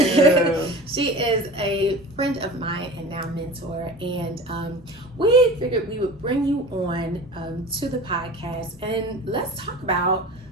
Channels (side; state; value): both; normal; correlation 0.36